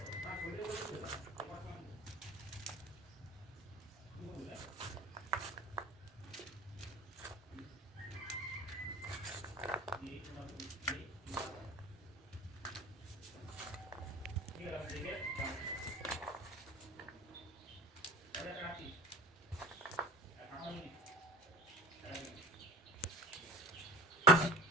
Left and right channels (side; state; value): both; normal; correlation 0.38